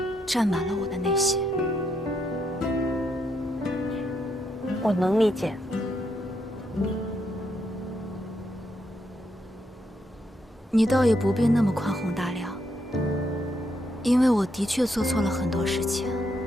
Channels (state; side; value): normal; both; correlation 0.78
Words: 占满了我的内心。我能理解。你倒也不必那么宽宏大量，因为我的确做错了很多事情。